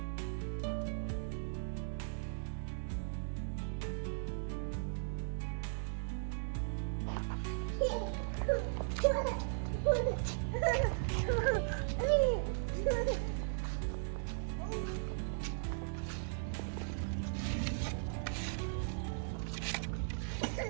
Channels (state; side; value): silent; left; digital silence